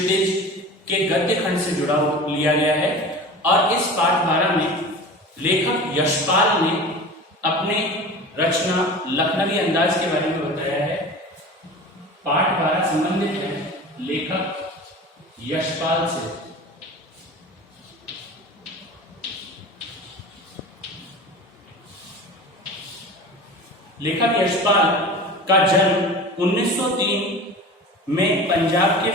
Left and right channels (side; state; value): both; normal; correlation 0.35